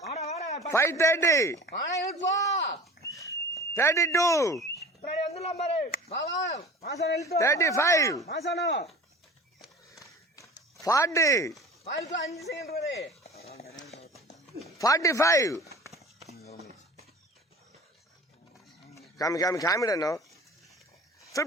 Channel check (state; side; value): normal; both; correlation 0.40